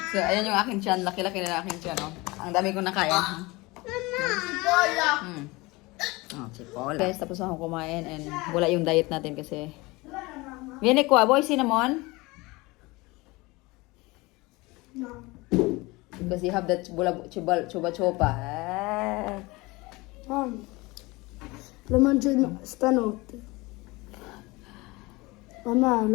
So, ayan yung aking tiyan. Laki-laki na aking tiyan, oh. Ang dami kong nakain. Cipolla! Cipolla. Guys, tapos ako kumain and wala yung diet natin kasi... Viene ko, boy, cinnamon? No. Because you have that chuba-chuba. Lo mangio stanotte. Mamma,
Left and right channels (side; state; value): right; quieter; 23.0 dB